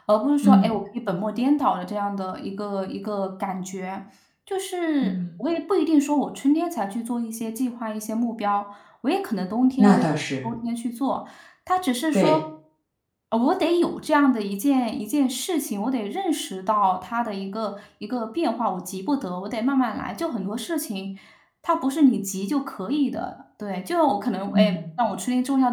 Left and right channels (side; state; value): both; identical; correlation 1.00